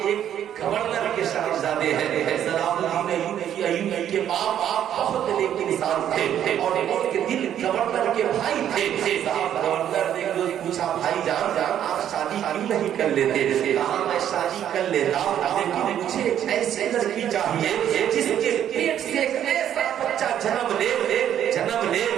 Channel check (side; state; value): left; quieter; 10.3 dB